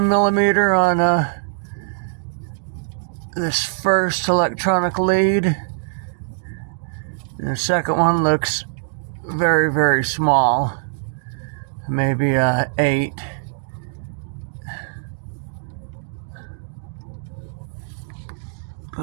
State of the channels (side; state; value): left; silent; digital silence